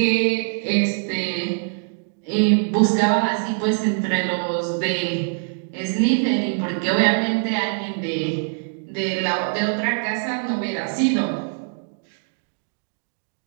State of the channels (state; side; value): silent; left; digital silence